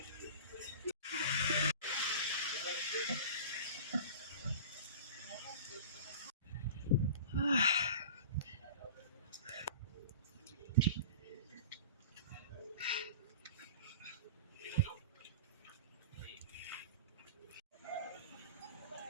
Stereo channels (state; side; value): inverted; both; correlation -0.37